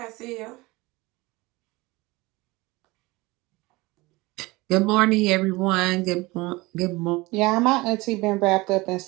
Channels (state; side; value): quieter; left; 22.3 dB